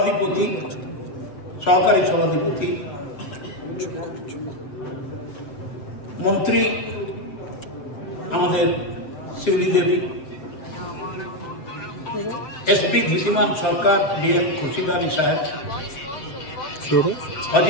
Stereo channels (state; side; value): late; right; 7.7 ms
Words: সহকারী সভাধিপতি, মন্ত্রী আমাদের শিউলি দেবী, एसपी धृतिमान सरकार, डीएम खुर्शीद आली साहेब,